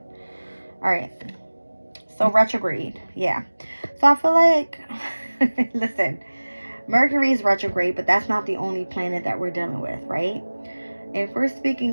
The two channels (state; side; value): inverted; both; correlation -1.00